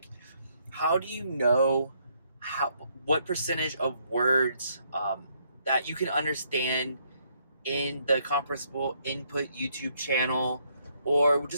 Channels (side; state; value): both; inverted; correlation -0.71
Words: how do you know how what percentage of words that you can understand in the Comprehensible Input YouTube channel, or